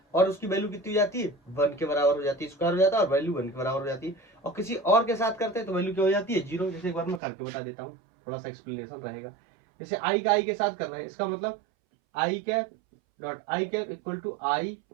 और उसकी वैल्यू कितनी हो जाती है 1 के बराबर हो जाती है, स्क्वायर हो जाता है और वैल्यू 1 के बराबर हो जाती है। और किसी और के साथ करते हैं तो वैल्यू क्या हो जाती है 0। जैसे एक बार मैं करके बता देता हूँ, थोड़ा सा एक्सप्लेनेशन रहेगा। जैसे आई का आई के साथ कर रहे हैं, इसका मतलब I cap dot I cap equal to I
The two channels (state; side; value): drops out; left; at 7.2 s